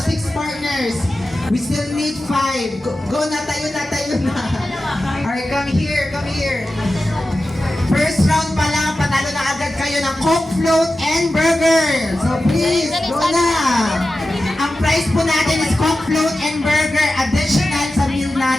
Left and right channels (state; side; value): normal; both; correlation 0.93